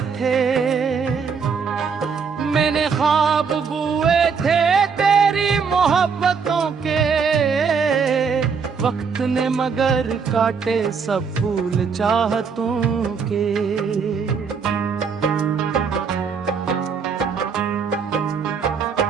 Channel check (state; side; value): quieter; left; 5.9 dB